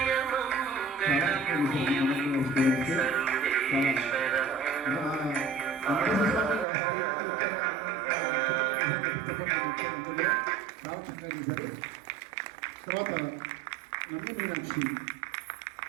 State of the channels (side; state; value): left; drops out; at 6.7 s